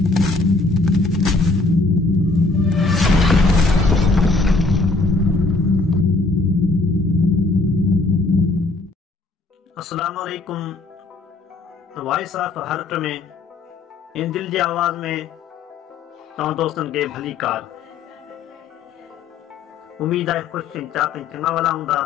वालेकुम। Voice of heart में इन दिल जी आवाज़ में तव्हां दोस्तन के भली कार। उम्मीद है खुश चिंता चंगा वाला हूंदा।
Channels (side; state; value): right; quieter; 3.5 dB